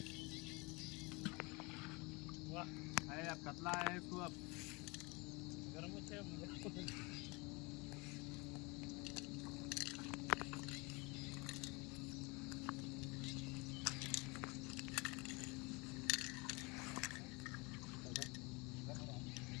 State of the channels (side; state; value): right; quieter; 27.0 dB